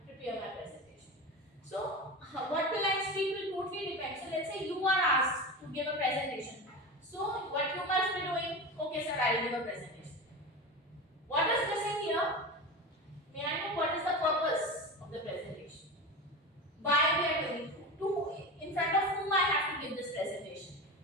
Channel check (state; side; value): normal; both; correlation 0.25